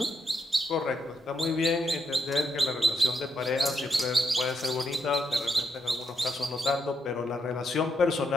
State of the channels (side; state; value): both; normal; correlation 0.79